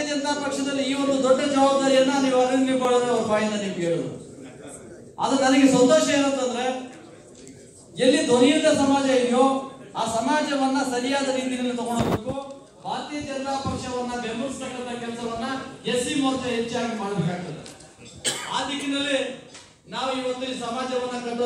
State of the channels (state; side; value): identical; both; correlation 1.00